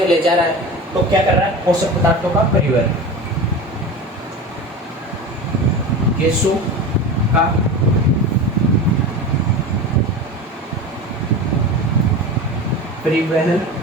ले जा रहा है। तो क्या कर रहा है? पोषक पदार्थों का परिवहन। गैसों का परिवहन,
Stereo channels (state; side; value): normal; both; correlation 0.30